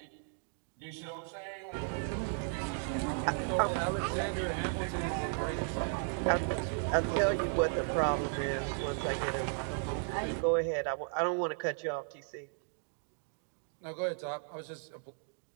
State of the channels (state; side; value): silent; left; 54 dB below the other